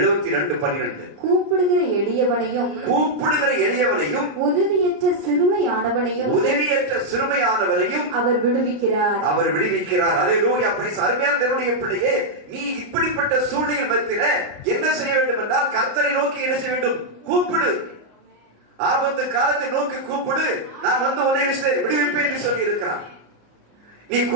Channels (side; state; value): left; late; 34 ms